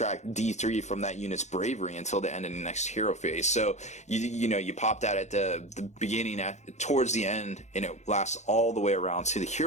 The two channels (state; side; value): late; right; 0.33 ms